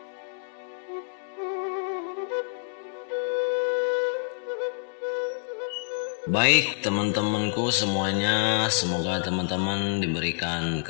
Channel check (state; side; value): silent; right; digital silence